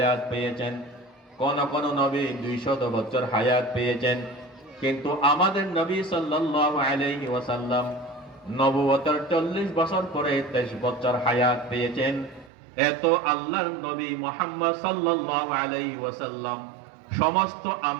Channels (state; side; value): drops out; left; at 12.5 s